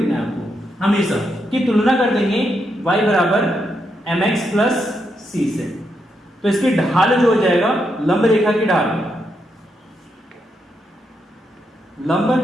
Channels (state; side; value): normal; both; correlation 0.81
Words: है आपको, हमेशा की तुलना कर देंगे y बराबर mx प्लस c से, तो इसकी ढाल जो हो जाएगा, लंब रेखा की ढाल, लंब